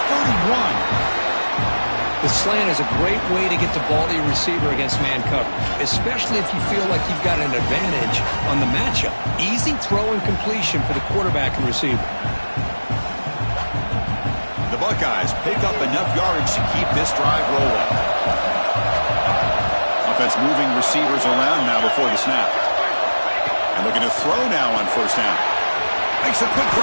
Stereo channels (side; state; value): both; inverted; correlation -1.00